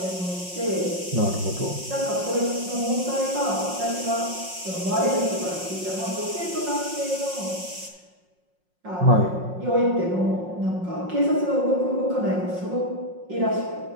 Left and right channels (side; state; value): left; late; 5.5 ms